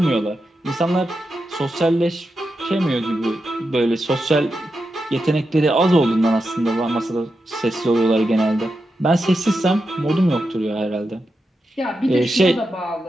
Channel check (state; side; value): normal; both; correlation 0.88